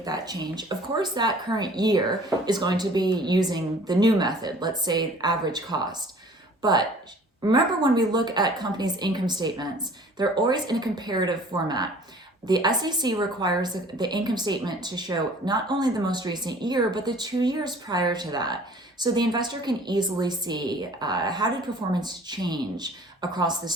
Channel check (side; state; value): both; normal; correlation 0.50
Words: that change, of course, that current year is going to be using the new method, let's say average cost. But remember, when we look at companies' income statements, they're always in a comparative format. The SEC requires the income statement to show not only the most recent year, but the 2 years prior to that. So the investor can easily see how did performance change across this